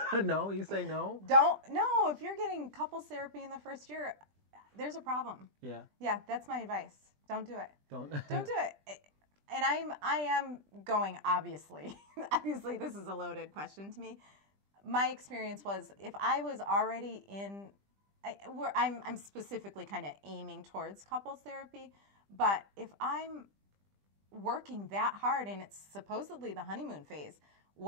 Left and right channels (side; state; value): left; late; 20 ms